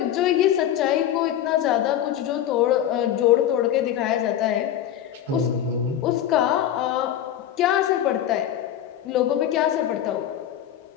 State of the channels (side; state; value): right; quieter; 11.0 dB